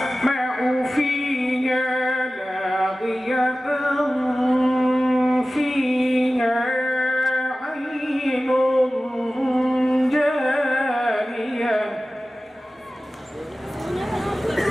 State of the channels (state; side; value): normal; both; correlation 0.96